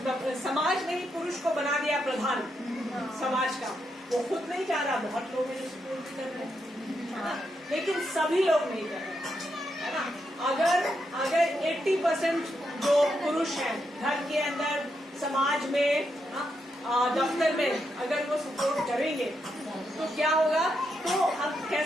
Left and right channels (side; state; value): both; normal; correlation 0.82